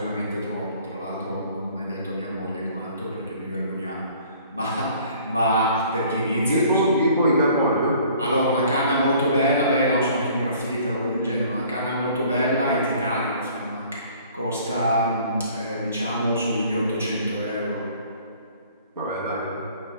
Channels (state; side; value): inverted; both; correlation -0.54